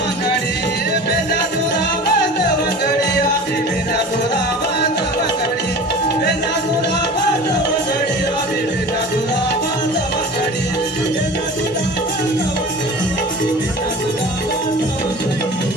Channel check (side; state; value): both; normal; correlation 0.38